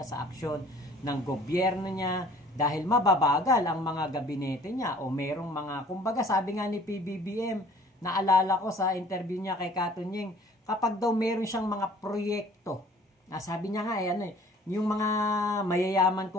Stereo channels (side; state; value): both; normal; correlation 0.52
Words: sa aksyon ng gobyerno niya dahil mababagal ang mga gabinete niya o merong mga, kumbaga sabi nga ni PBBM, naalala ko sa interview niya kay Katunying, kapag daw meron siyang mga proyekto, sabi niya nga yung mga mayayaman